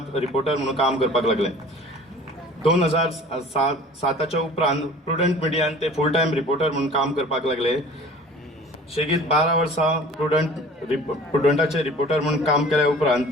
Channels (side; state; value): both; normal; correlation 0.45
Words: रिपोर्टर म्हणून काम करपाक लागले. 2007च्या उपरांत प्रुडंट मिडियान ते फुल टायम रिपोर्टर म्हणून काम करपाक लागले. शेगीत 12 वर्सां प्रुडंटाचे रिपोर्टर म्हणून काम केल्या उपरांत